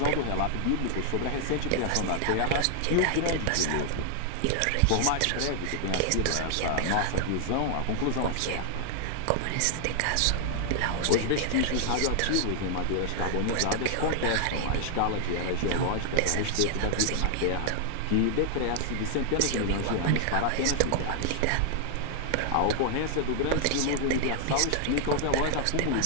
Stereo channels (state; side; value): different; both; correlation 0.00